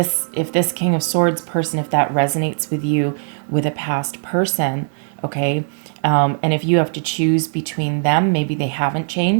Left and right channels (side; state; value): left; silent; digital silence